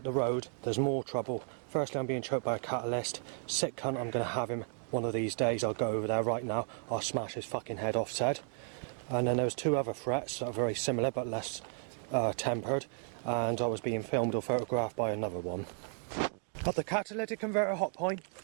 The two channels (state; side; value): silent; left; 55 dB below the other